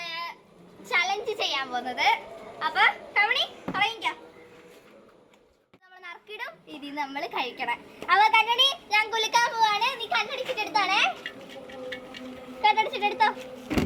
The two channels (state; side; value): identical; both; correlation 1.00